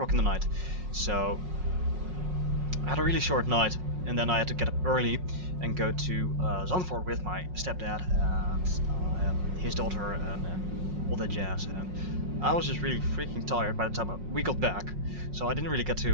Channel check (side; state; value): left; late; 5.5 ms